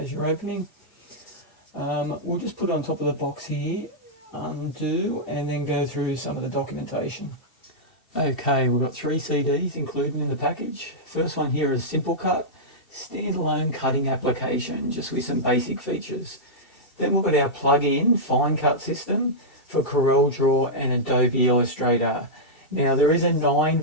you're opening. We'll just put it on top of the box here, undo, and then go through some of the documentation. Okay, we've got 3 CDs included in the package. First one here is Simple Cut. Standalone cutting application just with some basic features. Then we've got our plug-in FineCut system for CorelDRAW and Adobe Illustrator. Now there is a 9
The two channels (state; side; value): late; right; 2.7 ms